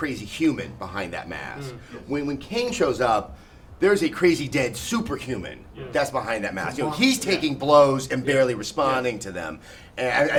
human behind that mask. When Kane shows up, there's a crazy dead superhuman that's behind that mask. He's taking blows and barely responding to them. And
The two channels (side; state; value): both; identical; correlation 1.00